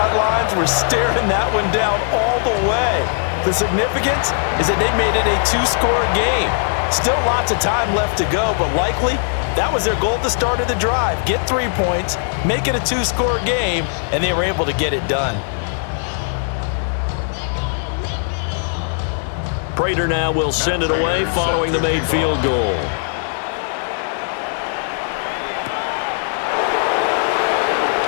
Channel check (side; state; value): right; silent; 67 dB below the other